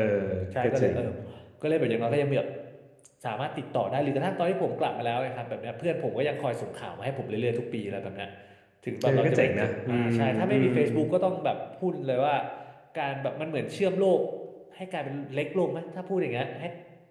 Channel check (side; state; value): both; identical; correlation 1.00